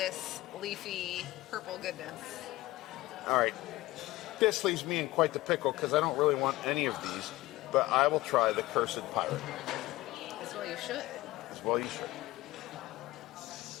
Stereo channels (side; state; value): right; quieter; 18.1 dB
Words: leafy purple goodness. All right. This leaves me in quite the pickle because I don't really want any of these, but I will try the Cursed Pirate. As well you should. As well you should.